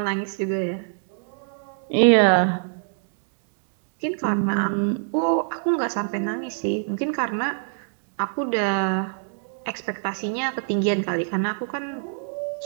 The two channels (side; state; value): left; silent; digital silence